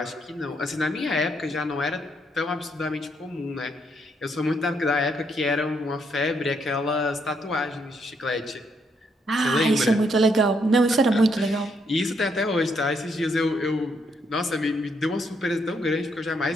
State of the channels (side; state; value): both; normal; correlation 0.74